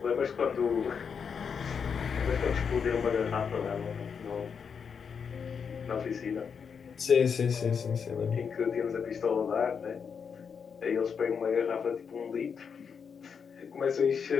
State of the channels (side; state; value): right; quieter; 6.5 dB